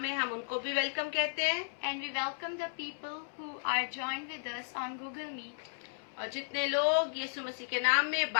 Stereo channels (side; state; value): right; silent; digital silence